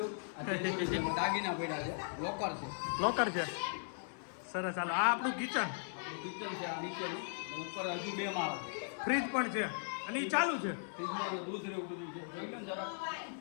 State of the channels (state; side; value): silent; right; 52 dB below the other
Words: આ તે દૂરી છે, દાગીના પડ્યા છે લોકર છે લોકર છે સરસ ચાલો આ આપણું કિચન કિચન છે આ નીચેનું ઉપર હજુ 2 માળ ફ્રીજ પણ છે અને એ ચાલુ છે ફ્રીજમાં તો દૂધ ને એવું બધું છે જોઈ લો ને જરા